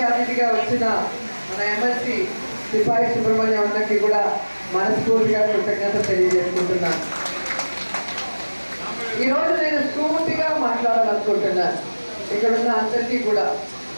అతిథిగా వచ్చిన మన ఎమ్మెల్సీ సిపాయి సుబ్రహ్మణ్యం అన్నకి కూడా మనస్ఫూర్తిగా కృతజ్ఞత తెలియజేసుకుంటున్నాను. ఈరోజు నేను స్ఫూర్తిగా మాట్లాడాలనుకుంటున్నాను ఇక్కడ ఉన్న అందరికీ కూడా,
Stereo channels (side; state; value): both; inverted; correlation -1.00